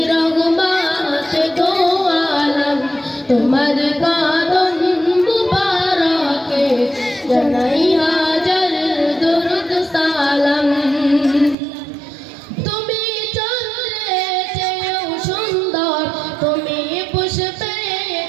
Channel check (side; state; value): left; drops out; at 11.6 s